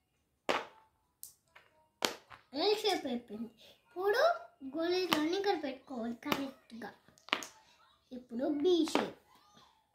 ఎల్ షేప్ అయిపోయింది. ఇప్పుడు గోళీలన్నీ ఇక్కడ పెట్టుకోవాలి కరెక్ట్గా. ఇప్పుడు బి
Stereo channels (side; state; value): both; identical; correlation 1.00